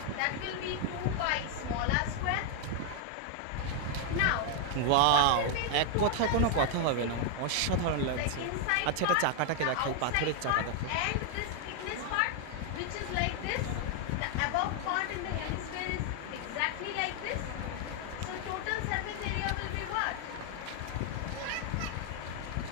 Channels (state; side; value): different; both; correlation 0.00